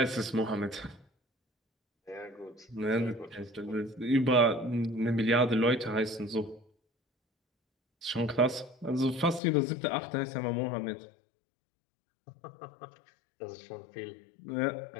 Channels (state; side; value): drops out; right; at 9.4 s